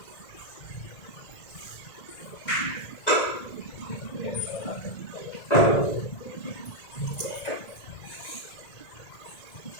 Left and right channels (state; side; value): late; right; 1.9 ms